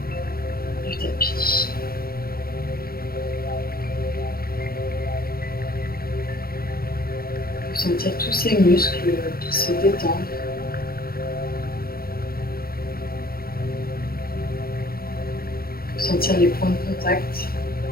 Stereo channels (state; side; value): late; right; 0.44 ms